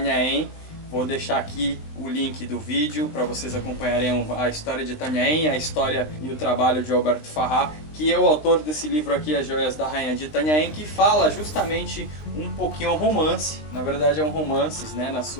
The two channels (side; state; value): right; late; 20 ms